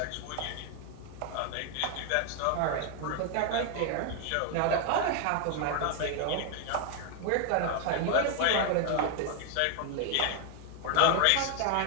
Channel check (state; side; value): different; both; correlation 0.00